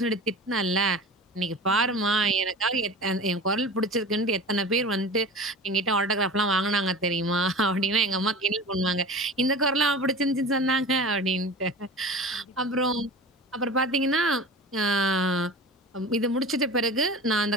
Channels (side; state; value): both; normal; correlation 0.35